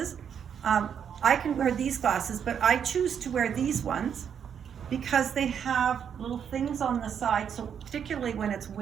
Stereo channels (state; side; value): quieter; left; 8.0 dB